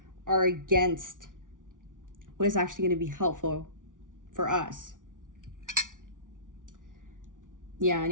are against what is actually going to be helpful for us. Yeah,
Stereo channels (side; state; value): left; late; 0.88 ms